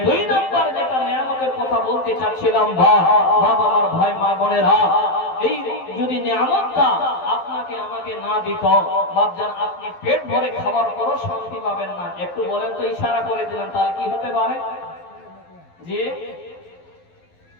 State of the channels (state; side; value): late; right; 12 ms